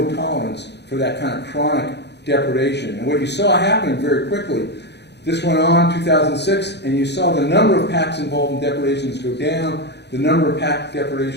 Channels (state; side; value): late; right; 0.50 ms